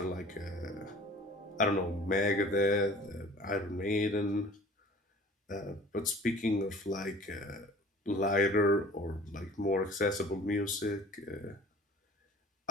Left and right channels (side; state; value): both; normal; correlation 0.48